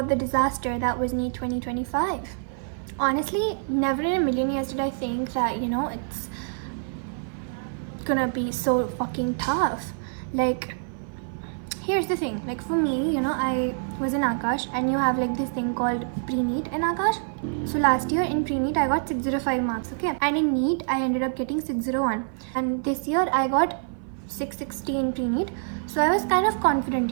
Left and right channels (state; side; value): silent; left; 55 dB below the other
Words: the disaster that was NEET 2025. Honestly, never in a million years did I think that, it's gonna be so fucking tough. Like, here's the thing, like for me, I was in Akash and you have like this thing called pre-NEET in Akash. So last year in pre-NEET I got 605 marks, okay? And in NEET I ended up getting 601. And this year I got 660 in pre-NEET. So I was kind of confident,